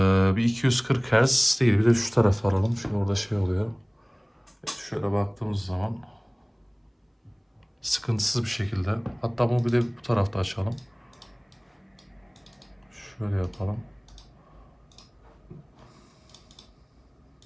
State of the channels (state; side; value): identical; both; correlation 1.00